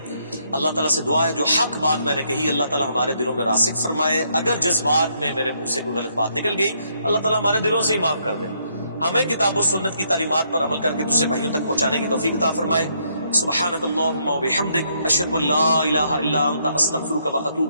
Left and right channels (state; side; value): inverted; both; correlation -0.73